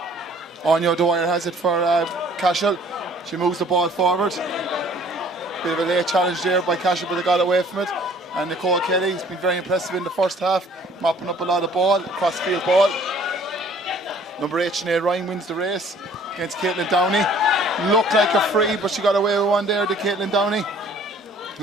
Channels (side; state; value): both; normal; correlation 0.55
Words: Anya Dwyer has it for Cashel. She moves the ball forward. Bit of a late challenge there by Cashel, but they got away from it. And Nicole Kelly has been very impressive in the first half, mopping up a lot of ball, cross-field ball. Number 8, Sinead Ryan wins the race against Caitlin Downey. Looked like a free, but she got away with one there, the Caitlin Downey.